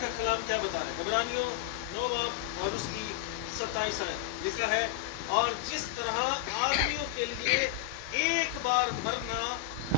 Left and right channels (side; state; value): right; quieter; 12.8 dB